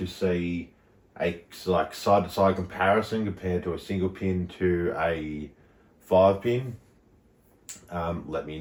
see a like side-to-side comparison compared to a single pin to a 5-pin, let me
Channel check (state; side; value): identical; both; correlation 1.00